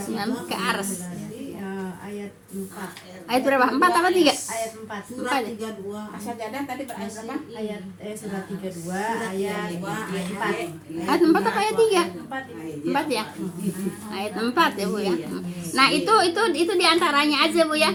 ke Ares. Ayat 4. Ayat berapa? 4 apa 3? Ayat 4. Surat 32. Sajadah tadi berayat berapa? Ayat surat 32 ayat 4. Ayat 4 apa ayat 3? 4. 4 ya? Ayat 4 ya Bu ya. Nah, itu diantaranya aja Bu ya.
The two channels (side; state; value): both; identical; correlation 1.00